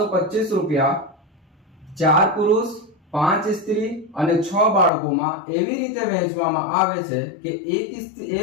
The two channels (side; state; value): right; drops out; at 4.9 s